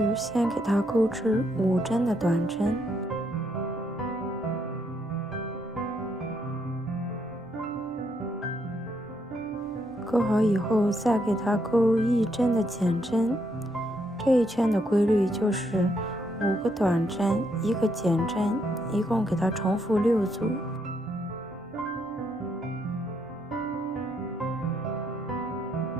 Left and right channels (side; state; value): both; normal; correlation 0.75